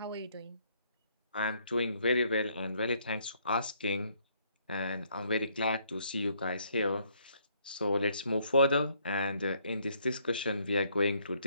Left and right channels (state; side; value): inverted; both; correlation -0.68